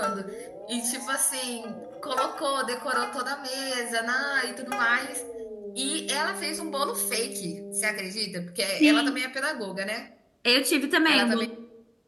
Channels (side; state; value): both; identical; correlation 1.00